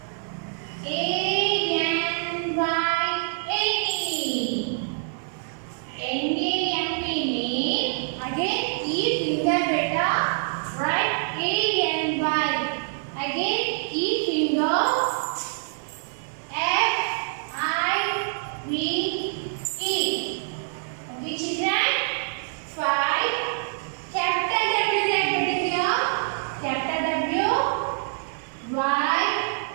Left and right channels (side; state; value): left; silent; 57 dB below the other